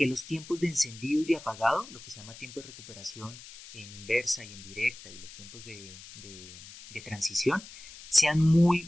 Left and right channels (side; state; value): left; noise; hiss, 16 dB below the sound